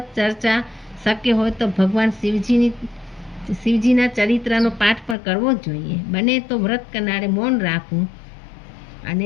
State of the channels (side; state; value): right; drops out; at 5.2 s